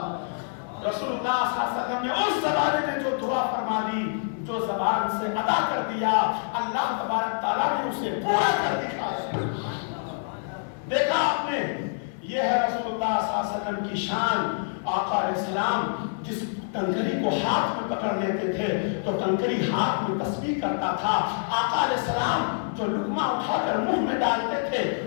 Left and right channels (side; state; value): right; silent; digital silence